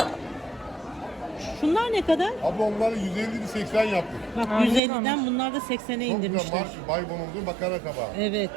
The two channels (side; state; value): left; drops out; at 4.8 s